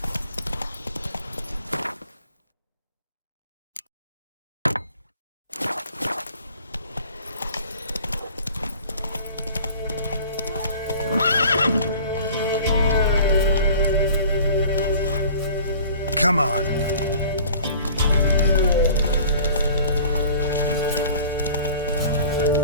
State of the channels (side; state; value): both; inverted; correlation -0.46